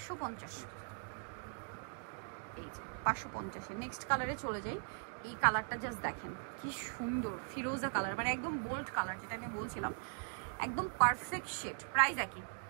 এই যে 550। নেক্সট কালারে চলে যাই, এই কালারটা জাস্ট দেখেন কি সুন্দর, ফিরোজা কালার, মানে একদম বোল্ড কালার, যেটা আমি বলছিলাম একদম পারফেক্ট শেড। প্রাইস একই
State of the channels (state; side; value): silent; left; 51 dB below the other